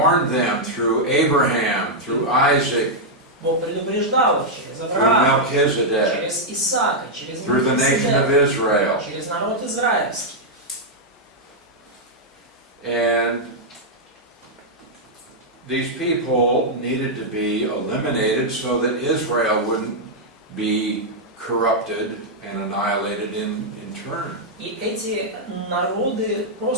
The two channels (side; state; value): both; normal; correlation -0.04